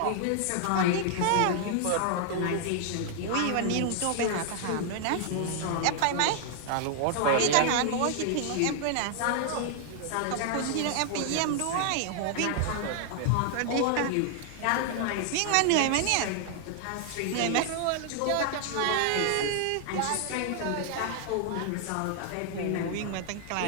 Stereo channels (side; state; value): both; different; correlation 0.00